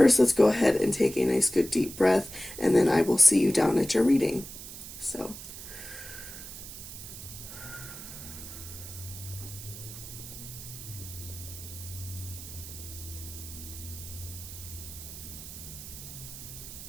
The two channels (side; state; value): right; noise; hiss, 12 dB below the sound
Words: let's go ahead and take a nice good deep breath, and then I will see you down at your reading. So